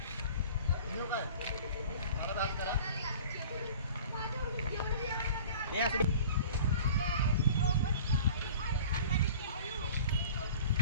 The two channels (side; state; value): both; inverted; correlation -0.43